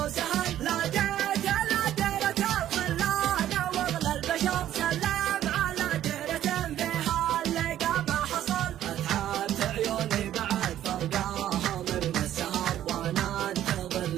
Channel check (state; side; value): quieter; left; 11.9 dB